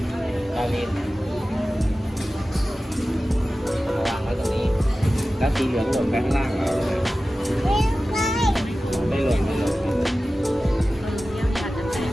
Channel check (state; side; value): normal; both; correlation 0.95